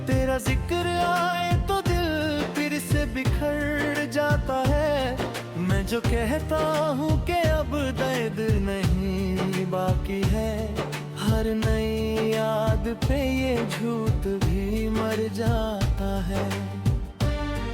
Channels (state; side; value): identical; both; correlation 1.00